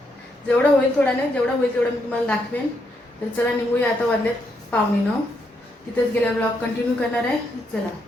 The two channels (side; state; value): both; normal; correlation 0.78